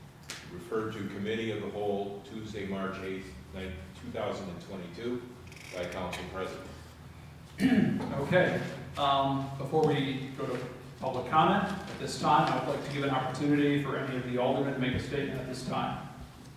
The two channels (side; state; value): both; identical; correlation 1.00